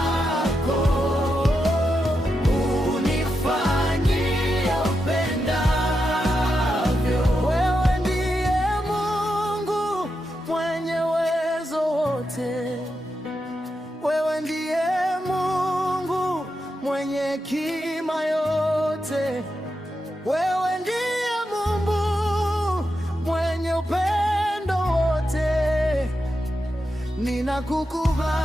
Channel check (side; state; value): both; normal; correlation 0.87